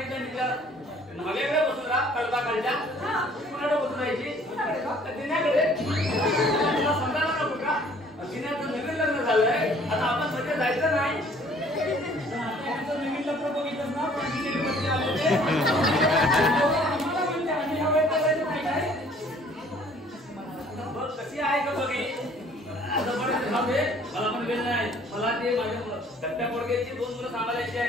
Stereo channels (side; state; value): both; normal; correlation 0.56